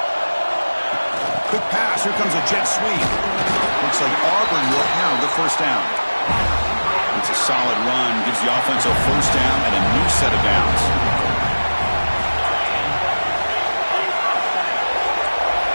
Quick pass. Here comes a jet sweep. Looks like Auburn will have the first down. It's a solid run. Gives the offense a first down and a new set of downs.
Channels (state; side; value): inverted; both; correlation -1.00